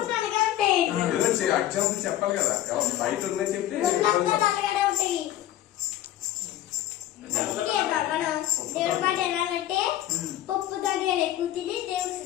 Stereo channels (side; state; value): right; quieter; 13.1 dB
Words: చెప్పాలి కదా బయట ఉన్నాయి చెప్పి దేవుడి మాట ఎలాగంటే పప్పు ధాన్యాలు ఎక్కువ తిని దేవుడు